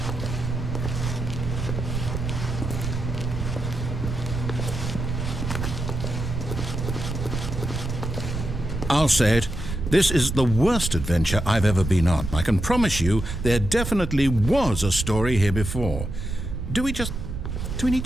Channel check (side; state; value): right; noise; rumble, 4 dB below the sound